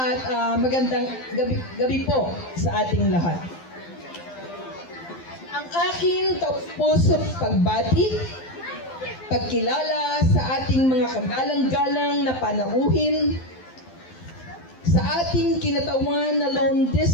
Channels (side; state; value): right; late; 12 ms